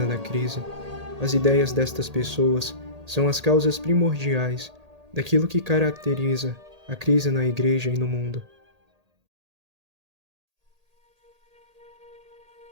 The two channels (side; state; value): left; late; 1.8 ms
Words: da crise, as ideias destas pessoas são as causas primordiais daquilo que caracteriza a crise na Igreja e no mundo.